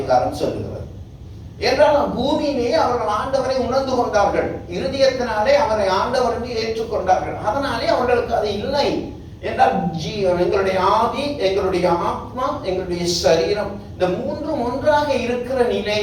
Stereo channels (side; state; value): both; identical; correlation 1.00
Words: சொல்லுகிறது. என்றால் பூமியிலே அவர்கள் ஆண்டவரை உணர்ந்து கொண்டார்கள், இருதயத்தினாலே அவரை ஆண்டவர் என்று ஏற்றுக்கொண்டார்கள். அதனாலே அவர்களுக்கு அது இல்லை என்றால் எங்களுடைய ஆவி, எங்களுடைய ஆத்மா, எங்களுடைய சரீரம், இந்த மூன்றும் ஒன்றாக இருக்கிற